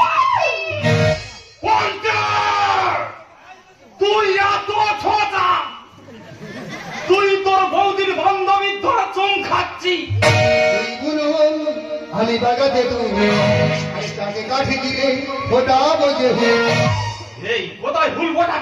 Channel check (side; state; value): both; identical; correlation 1.00